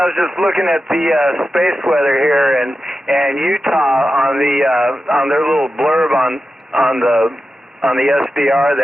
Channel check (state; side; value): normal; both; correlation 0.91